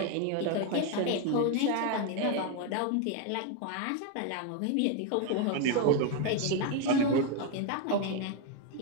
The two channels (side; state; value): both; different; correlation 0.01